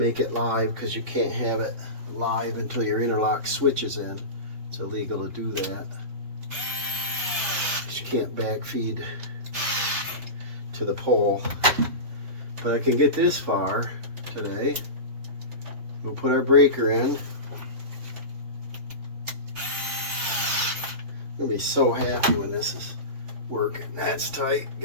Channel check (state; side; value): late; left; 3.3 ms